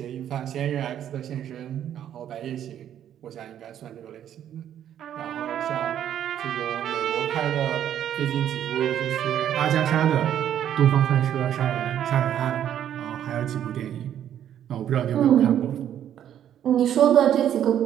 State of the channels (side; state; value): left; quieter; 10.4 dB